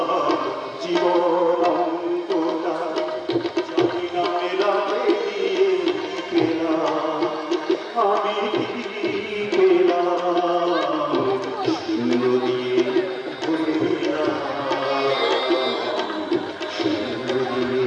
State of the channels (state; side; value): identical; both; correlation 1.00